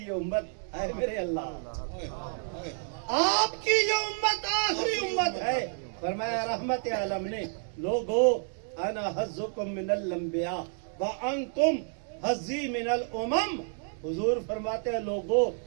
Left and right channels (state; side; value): silent; left; 58 dB below the other